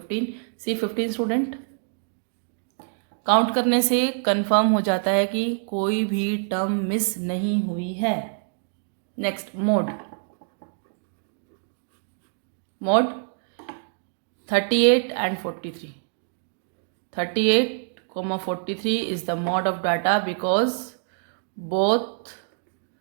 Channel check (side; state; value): left; silent; digital silence